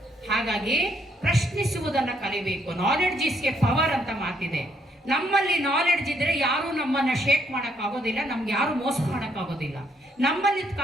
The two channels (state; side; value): normal; both; correlation 0.71